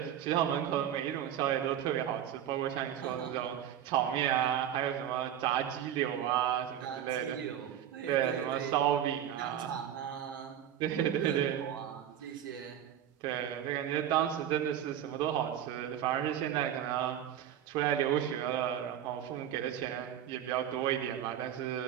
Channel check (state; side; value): quieter; left; 10.5 dB